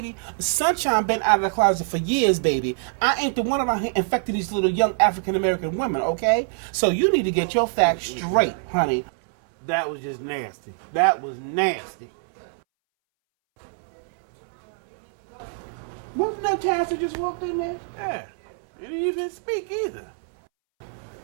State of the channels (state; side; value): silent; left; 62 dB below the other